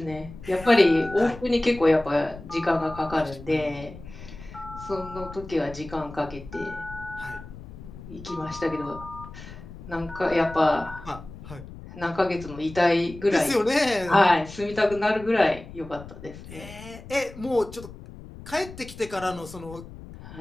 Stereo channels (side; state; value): left; noise; rumble, 15 dB below the sound